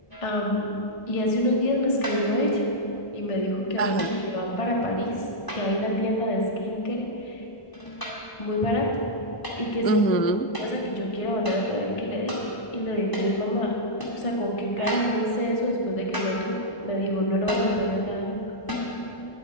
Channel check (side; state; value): right; late; 1.0 ms